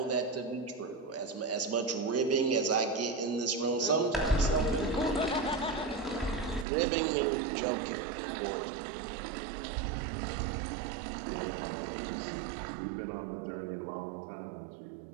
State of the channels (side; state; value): left; drops out; at 6.7 s